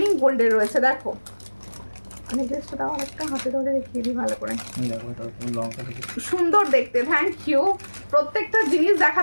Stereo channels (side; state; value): both; inverted; correlation -1.00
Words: গোল্ডের রয়েছে। দেখো নেকলেসটা দাও একটা, হাতে ধরে দেখিয়ে দিই ভালো করে। সুন্দর দেখতে, থ্যাংক ইউ। প্রত্যেকটা জিনিস